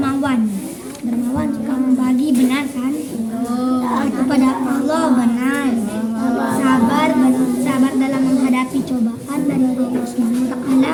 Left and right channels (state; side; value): identical; both; correlation 1.00